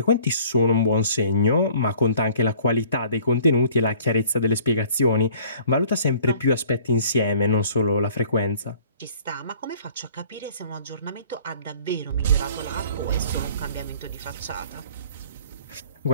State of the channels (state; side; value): inverted; both; correlation -0.53